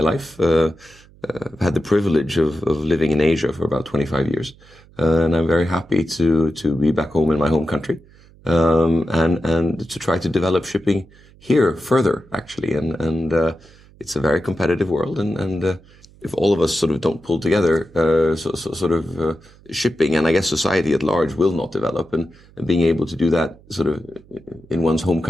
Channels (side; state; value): right; noise; hum, 26 dB below the sound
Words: life. I've had the privilege of living in Asia for about 25 years, and I'm very happy to be back home in my home country. And to try to develop shipping here further, actually. And it's a very competitive world. And if all of us sort of don't pull together, shipping and I guess society at large will not develop. And being able to do that sort of in one's home